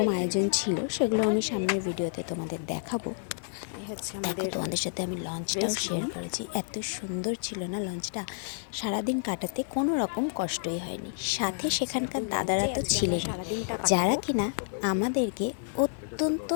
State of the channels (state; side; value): silent; right; 58 dB below the other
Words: আয়োজন ছিল, সেগুলো আমি সামনের ভিডিওতে তোমাদের দেখাবো। এই হচ্ছে তোমাদের সাথে আমি লঞ্চটাও শেয়ার করেছি। এত সুন্দর ছিল না লঞ্চটা, সারাদিন কাটাতে কোনো রকম কষ্টই হয়নি। সাথে সেখানকার দাদারা তো ছিলেন, যারা কিনা আমাদেরকে অত্যন্ত